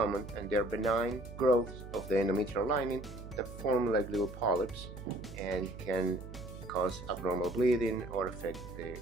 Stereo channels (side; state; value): right; noise; hum, 12 dB below the sound